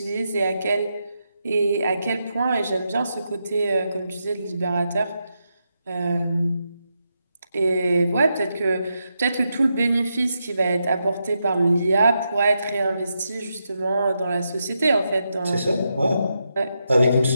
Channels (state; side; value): inverted; both; correlation -0.85